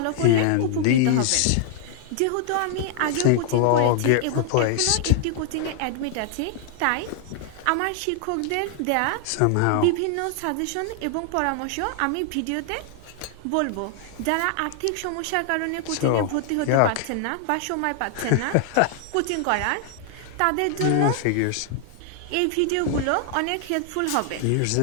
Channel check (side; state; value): both; different; correlation 0.00